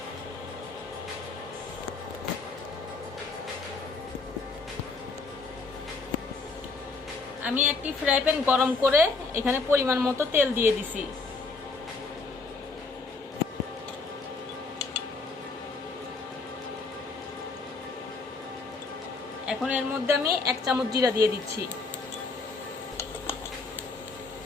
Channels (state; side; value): quieter; right; 4.0 dB